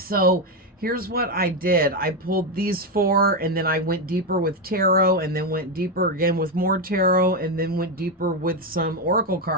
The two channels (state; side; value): normal; both; correlation 0.07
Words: here's what I did. I pulled these four, and then I went deeper with tarot, and then went deeper again with more tarot, and then went deeper with some oracle